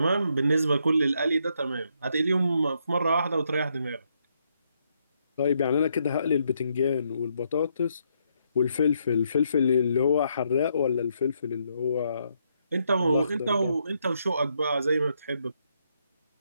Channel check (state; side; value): inverted; both; correlation -0.76